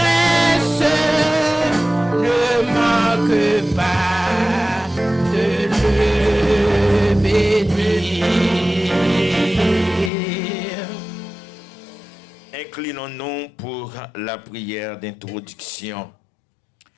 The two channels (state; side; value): drops out; right; at 10.1 s